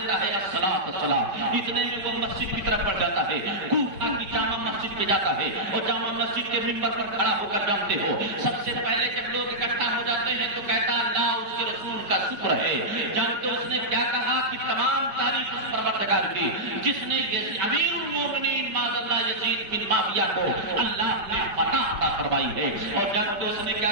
ہے الصلاۃ الصلاۃ، اتنے میں وہ مسجد کی طرف بڑھ جاتا ہے، کوفہ کی جامع مسجد پہ جاتا ہے اور جامع مسجد کے منبر پر کھڑا ہو کر جانتے ہو سب سے پہلے جب لوگ اکٹھا ہو جاتے ہیں تو کہتا اللہ اس کے رسول کا شکر ہے۔ جانتے اس نے کیا کہا کہ تمام تعریف اس پروردگار کی جس نے امیر المومنین معاذ اللہ یزید بن معاویہ کو اللہ نے فتح عطا فرمائی ہے۔ اور جب اس نے کیا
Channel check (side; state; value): left; late; 5.2 ms